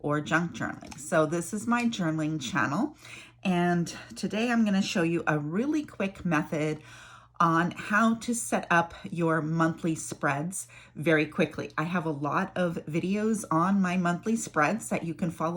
junk journaling. So this is my journaling channel, and today I'm going to show you a really quick method on how to set up your monthly spreads very quickly. I have a lot of videos on my monthly spreads that you can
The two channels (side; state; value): both; identical; correlation 1.00